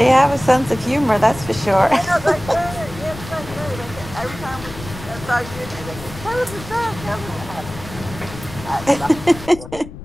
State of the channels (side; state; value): left; noise; rumble, 13 dB below the sound